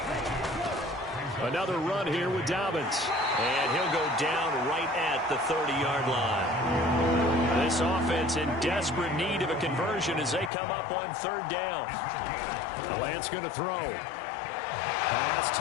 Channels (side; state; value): right; drops out; at 10.5 s